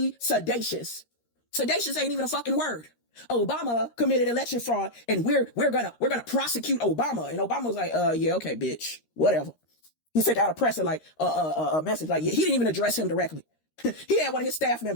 sedacious. Sedacious ain't even a fucking word. Obama committed election fraud, and we're gonna prosecute Obama. And Obama was like, yeah, okay, bitch, whatever. He sent out a presser like a message like, yeah, he didn't even address him directly. He had one of his staff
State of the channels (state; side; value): late; right; 13 ms